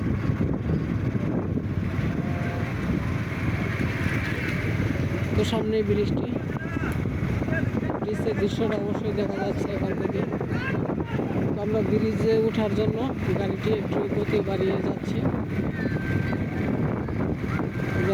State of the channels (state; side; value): identical; both; correlation 1.00